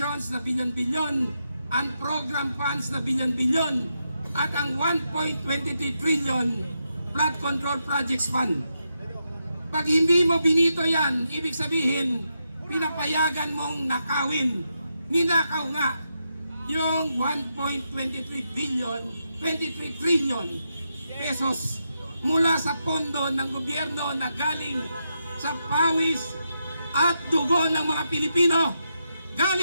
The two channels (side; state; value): both; inverted; correlation -0.84